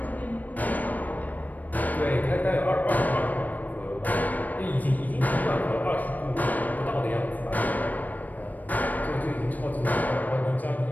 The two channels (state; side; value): late; right; 0.082 ms